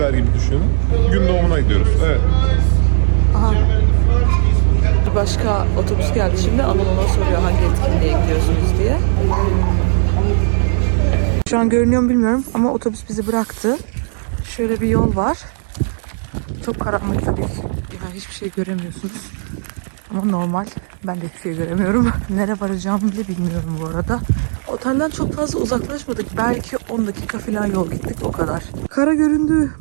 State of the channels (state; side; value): silent; left; 64 dB below the other